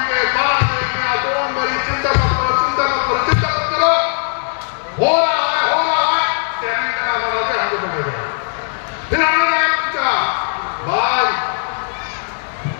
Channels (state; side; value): silent; right; 67 dB below the other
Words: डोंट वरी, चिंता मत करो, चिंता मत करो, चिंता मत करो, हो रहा है, ट्रेनिंग का नाम बना दे, हमको बनेगा। फिर हमने क्या पूछा, भाई